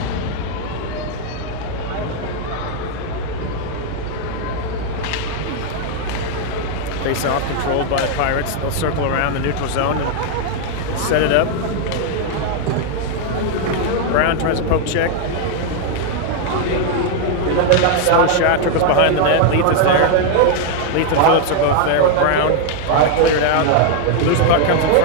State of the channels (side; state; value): both; different; correlation 0.00